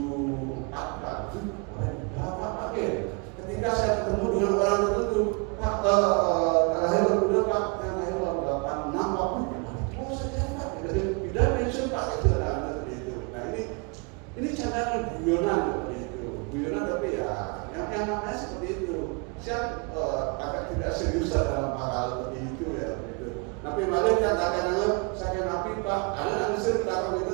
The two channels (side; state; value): left; quieter; 32.9 dB